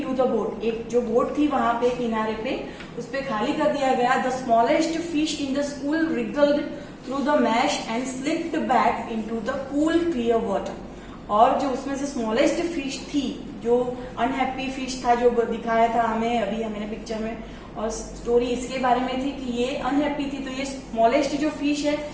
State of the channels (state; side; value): identical; both; correlation 1.00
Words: द बोट, एक जो बोट थी वहां पे किनारे पे उस पे खाली कर दिया गया. The smallest fish in the school रिगल्ड through the mash and slipped back into the cool clear water. और जो उसमें से स्मॉलेस्ट फिश थी, जो अनहैप्पी फिश था जो दिखाया था हमें अभी हमने पिक्चर में, और स्टोरी इसके बारे में थी कि ये अनहैप्पी थी, तो ये स्मॉलेस्ट जो फिश है